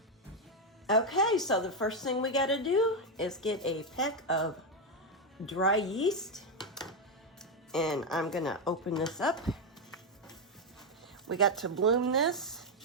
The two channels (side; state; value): both; normal; correlation 0.05